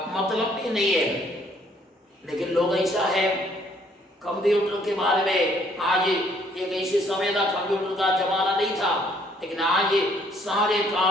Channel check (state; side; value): normal; both; correlation 0.64